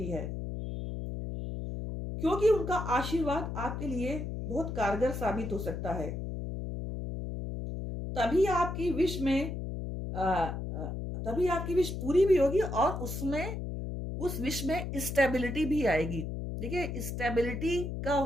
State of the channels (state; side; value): noise; left; hum, 5 dB below the sound